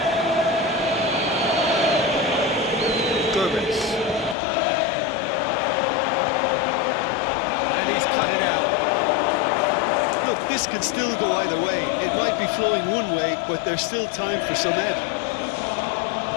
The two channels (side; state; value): right; drops out; at 4.4 s